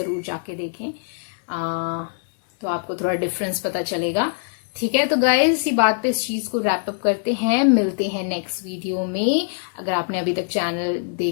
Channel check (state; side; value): silent; right; digital silence